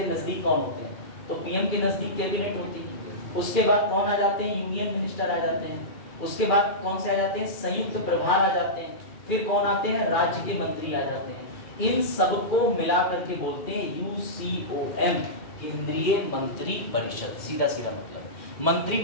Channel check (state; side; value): late; right; 2.4 ms